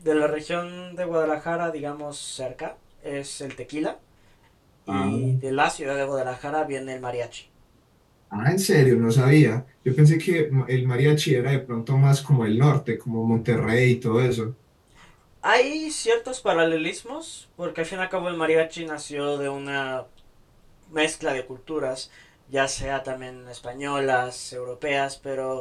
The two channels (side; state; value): both; identical; correlation 1.00